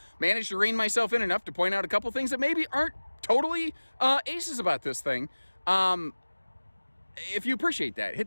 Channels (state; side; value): inverted; both; correlation -1.00